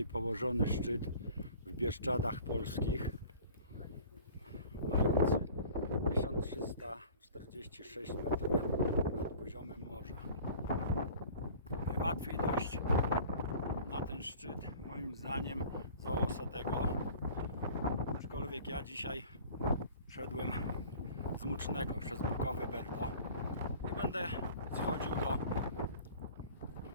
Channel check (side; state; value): both; inverted; correlation -0.45